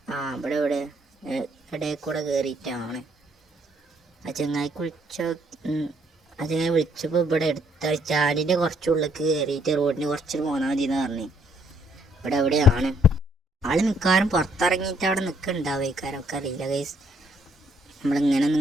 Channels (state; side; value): normal; both; correlation 0.68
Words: ഇവിടെ ഇടയിൽ കൂടെ കയറിയിട്ടാണ്. ആ ചങ്ങായിക്ക് ആ ചങ്ങായി വിളിച്ചപ്പോൾ ഇവിടെ എടുത്ത ചാലിൻ്റെ കുറച്ചുള്ളിലേക്ക് കയറിയിട്ട് റോഡിന് കുറച്ച് പോന്നാൽ മതി എന്ന് പറഞ്ഞു. ഇവിടെ എവിടെയാണ് ആൾ മിക്കവാറും പുറത്തിറങ്ങിയിട്ട് അവിടെ നിൽക്കുന്നുണ്ടാവേക്കാരൊക്കെ അറിയില്ല ഗൈസ്. നമ്മളിങ്ങനെ